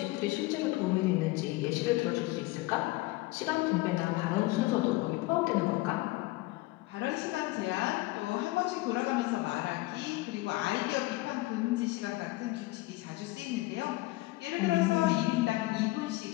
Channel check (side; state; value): right; quieter; 20.6 dB